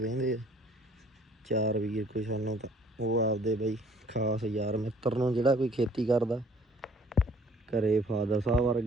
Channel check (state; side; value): normal; both; correlation 0.57